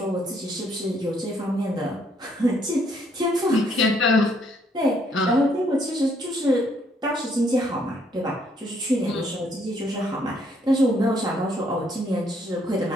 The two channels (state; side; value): normal; both; correlation 0.69